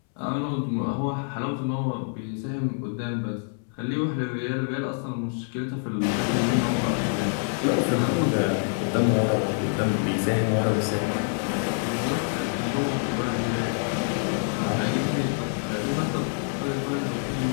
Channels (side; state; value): right; silent; 61 dB below the other